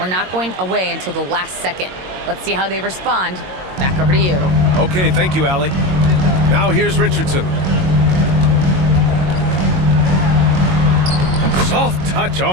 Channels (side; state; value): left; late; 22 ms